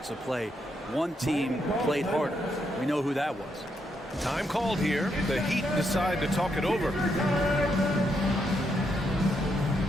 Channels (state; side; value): normal; both; correlation 0.79